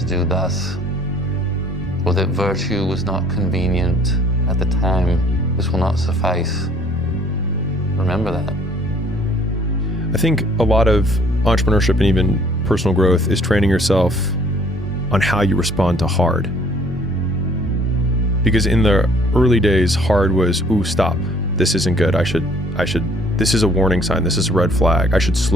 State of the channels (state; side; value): normal; both; correlation 0.58